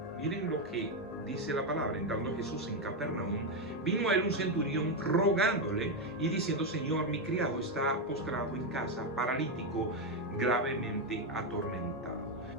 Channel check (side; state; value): both; normal; correlation 0.06